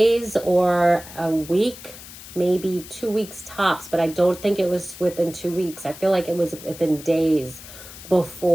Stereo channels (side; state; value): left; noise; hiss, 15 dB below the sound